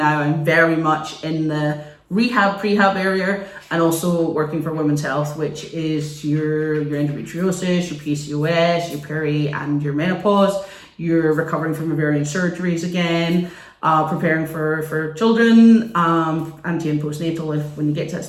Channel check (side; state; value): both; identical; correlation 1.00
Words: I'm very much in the prehab area, and also working for women's health, which is your endometriosis, your PCOS, your peri and your menopause. You're recovering from ovarian surgeries again, preparing for children, anti and postnatal when you get to that